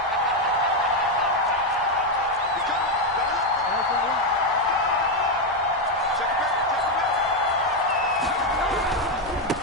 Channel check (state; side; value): normal; both; correlation 0.05